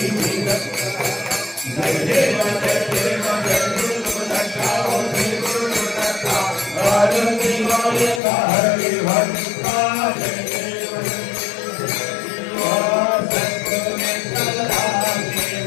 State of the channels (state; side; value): drops out; right; at 8.2 s